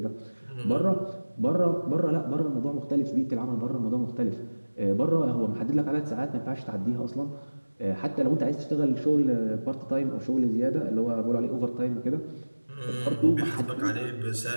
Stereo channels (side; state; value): both; inverted; correlation -1.00